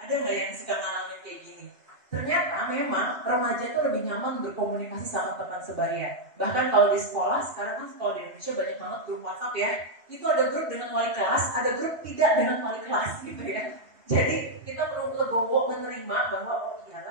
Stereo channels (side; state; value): left; late; 2.6 ms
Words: nggak yang suka ngalamin kayak gini? Ternyata memang remaja itu lebih nyaman berkomunikasi sama teman sebaya. Bahkan kalau di sekolah, sekarang kan sekolah di Indonesia banyak banget grup WhatsApp ya. Itu ada grup dengan wali kelas, ada grup tidak dengan wali kelas gitu ya. Jadi kita perlu legowo menerima bahwa oh